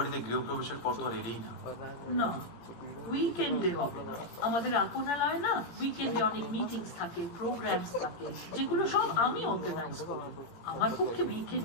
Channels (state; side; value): late; right; 17 ms